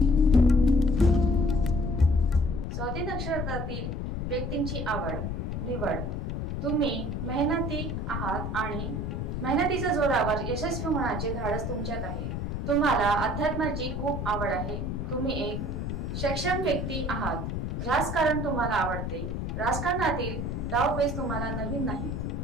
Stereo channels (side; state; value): left; noise; rumble, 3 dB below the sound